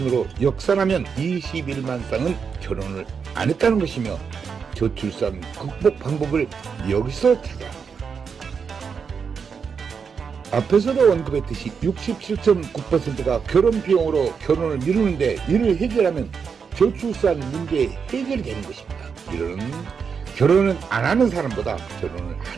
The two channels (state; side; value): quieter; left; 6.1 dB